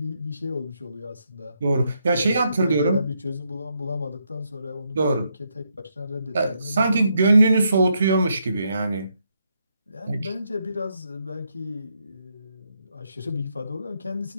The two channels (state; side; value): inverted; both; correlation -0.78